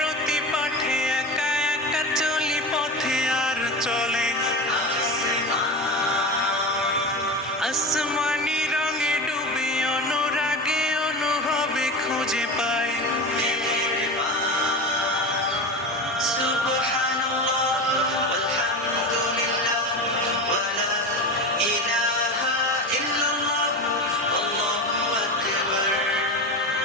পাঠে একা একা চলি পথে আর চলে আসমানি রঙে ডুবে অনুরাগে অনুভবে খুঁজে পায় সুবহানাল্লাহ আলহামদুলিল্লাহ ওয়ালা ইলাহা ইল্লাল্লাহ আল্লাহু আকবার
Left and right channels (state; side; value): normal; both; correlation 0.25